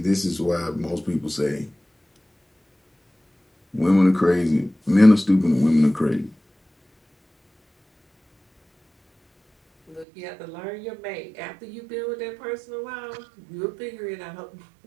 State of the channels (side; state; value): left; drops out; at 10.1 s